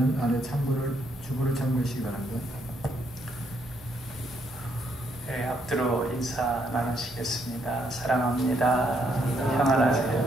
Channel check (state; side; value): normal; both; correlation 0.73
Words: 아래 주보를 참고하시기 바랍니다. 네, 앞뒤로 인사 나누시겠습니다. 사랑합니다.